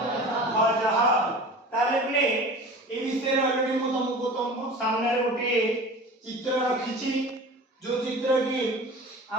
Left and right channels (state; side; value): normal; both; correlation 0.38